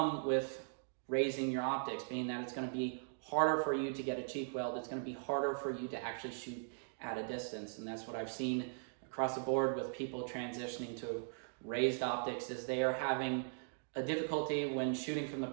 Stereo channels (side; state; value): left; silent; digital silence